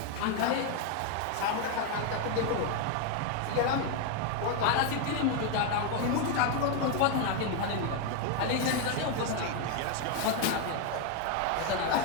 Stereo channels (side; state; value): both; different; correlation 0.01